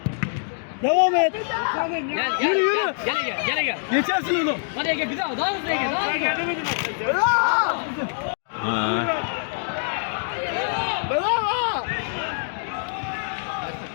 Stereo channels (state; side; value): silent; right; digital silence